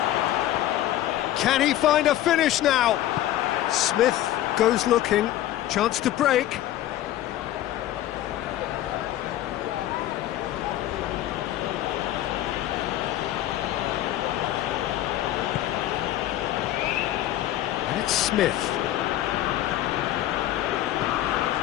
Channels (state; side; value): quieter; right; 13.5 dB